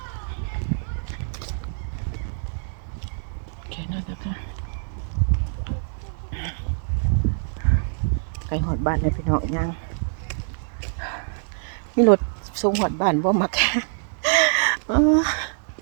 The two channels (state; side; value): silent; left; 62 dB below the other